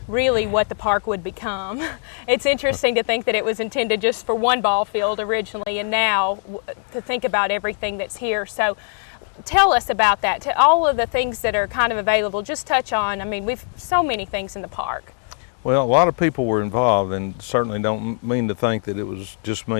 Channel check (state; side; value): silent; right; 56 dB below the other